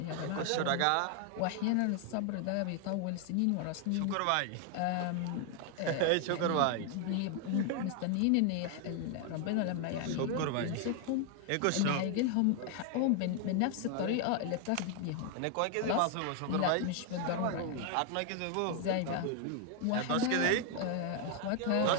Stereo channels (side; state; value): both; different; correlation 0.01